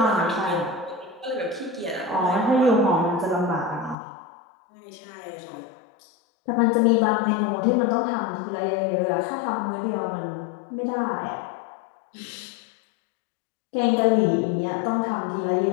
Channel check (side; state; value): right; drops out; at 4.0 s